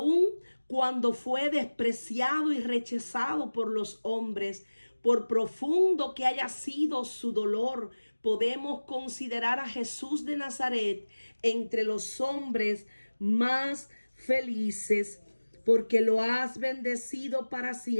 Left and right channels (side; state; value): both; inverted; correlation -1.00